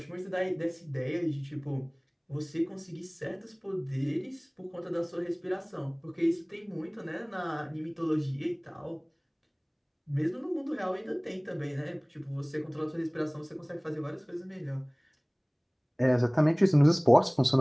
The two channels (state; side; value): identical; both; correlation 1.00